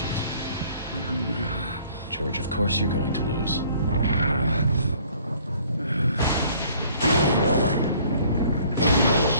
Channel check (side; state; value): both; inverted; correlation -0.57